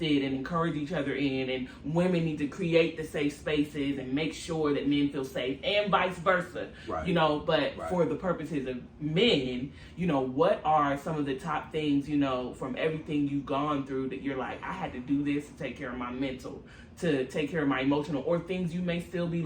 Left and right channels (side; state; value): both; identical; correlation 1.00